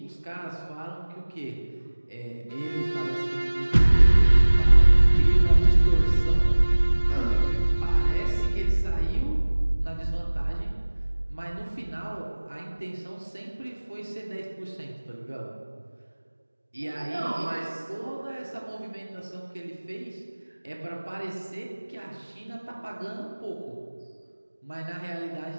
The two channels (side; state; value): both; inverted; correlation -1.00